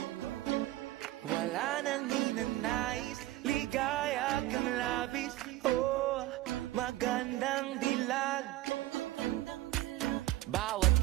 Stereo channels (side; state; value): left; quieter; 16.1 dB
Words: Wala nang ninanais, ligaya kang labis. Oh, magandang dilag. Bawat